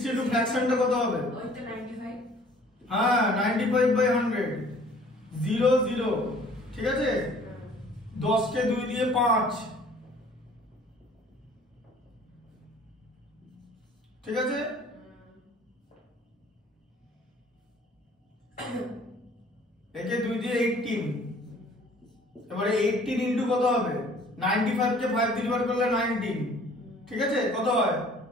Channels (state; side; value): normal; both; correlation 0.53